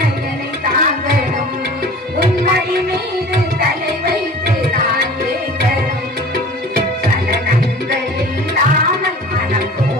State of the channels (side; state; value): both; normal; correlation 0.42